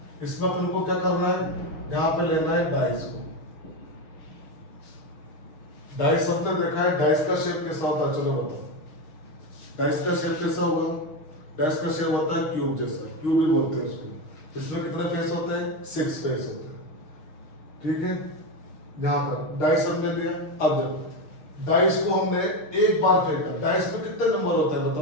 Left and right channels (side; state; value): right; late; 6.4 ms